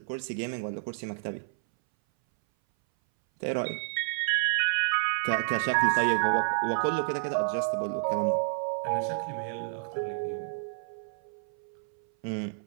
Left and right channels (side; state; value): left; silent; 58 dB below the other